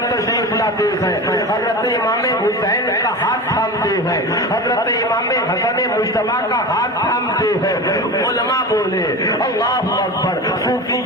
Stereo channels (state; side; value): normal; both; correlation 0.28